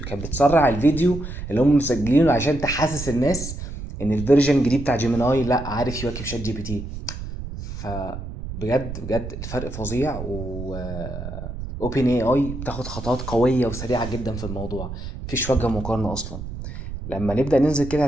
كانت بتسرع الفيديو اللي هم مسجلينه عشان تحسس الناس ان الفيرجن الجديد بتاع جيميناي لا عارف يواكب شات جي بي تي. فبجد بجد الفرق فظيع. و اوبن اي اي بتاخد خطوات قويه وسريعه جدا في الموضوع، مفيش وجه مقارنه اصلا. لما نبدا ننزل كده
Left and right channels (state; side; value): noise; right; rumble, 8 dB below the sound